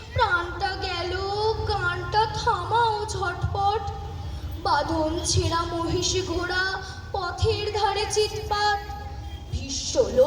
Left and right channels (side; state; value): both; identical; correlation 1.00